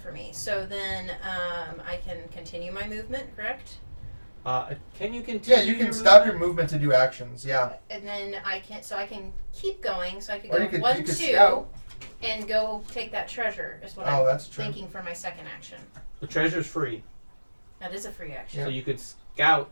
me. So then I can continue my movement, correct? Can you continue? yeah, you can your stop your movement? movement to do actions. Yeah. And then I can keep going. So I could Or go you could 1, you could 2, scout. and go take that treasure. Is what Oh, I'm that's true. thinking for my second action. The treasure's free, That is a free action. so you could scout.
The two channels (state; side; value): inverted; both; correlation -1.00